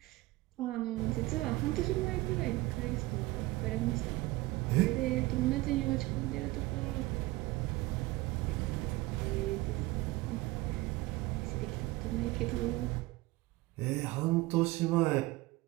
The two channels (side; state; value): left; quieter; 20.0 dB